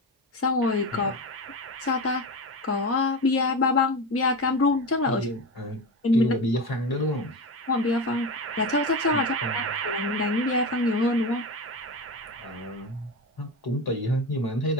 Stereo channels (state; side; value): normal; both; correlation 0.22